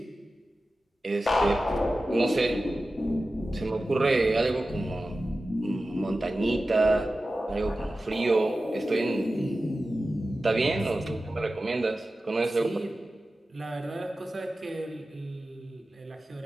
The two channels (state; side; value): normal; both; correlation 0.94